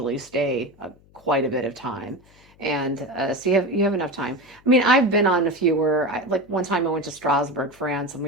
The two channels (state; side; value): noise; left; hum, 29 dB below the sound